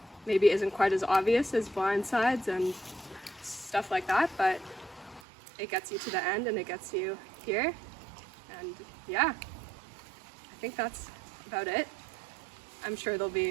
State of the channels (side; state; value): left; drops out; at 5.2 s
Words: maybe isn't quite as obvious as blindsides and stuff like that, but it gets you to the end and it gets you here, and yeah, I think that's about it. I'm sure there'll